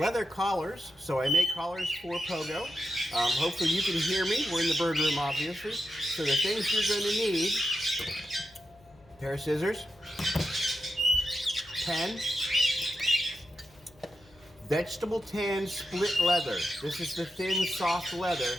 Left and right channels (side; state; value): left; noise; hum, 28 dB below the sound